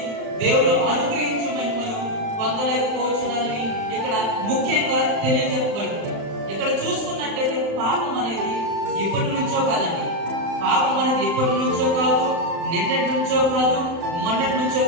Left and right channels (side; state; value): left; late; 35 ms